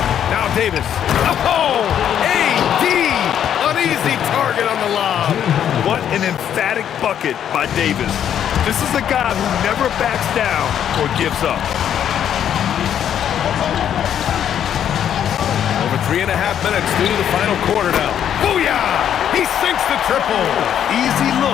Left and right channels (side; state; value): right; quieter; 9.6 dB